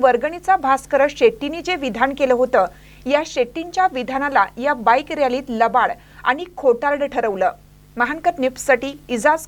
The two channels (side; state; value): both; identical; correlation 1.00